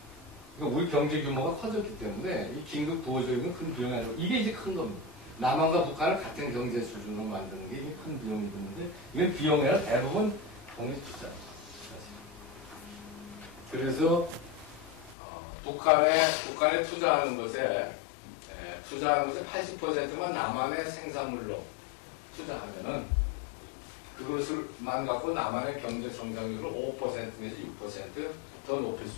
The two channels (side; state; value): right; drops out; at 15.2 s